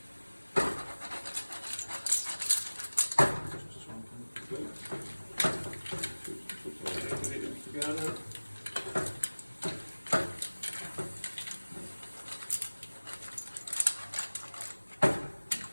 Just something good. Put all the ingredients together.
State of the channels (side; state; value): both; inverted; correlation -1.00